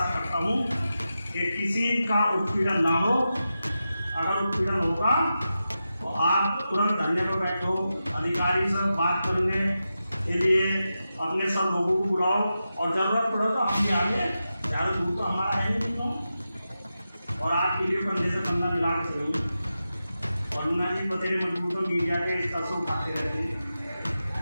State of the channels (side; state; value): both; inverted; correlation -0.91